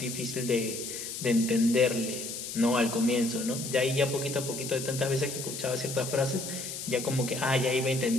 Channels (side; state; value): left; noise; hiss, 7 dB below the sound